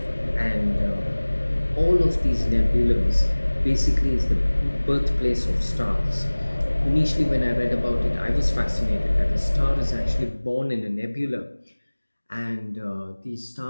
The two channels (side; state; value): both; inverted; correlation -1.00